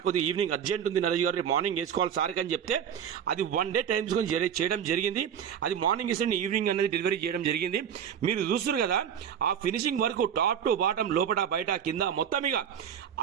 కొద్దిగా ఈవినింగ్ అర్జెంట్ ఉంది నరేష్ గారు, మార్నింగ్ వేసుకోవాలి సార్ అని చెప్తే అది 1 డే టైం చేయడం జరిగింది. అది మార్నింగ్ ఇస్తే ఈవినింగ్ అనేది డెలివరీ చేయడం జరిగింది. మీరు చూస్తున్నారు కదా, ఆ finishing work top to bottom లోపల బయట కింద మొత్తం ఇక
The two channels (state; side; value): quieter; left; 8.6 dB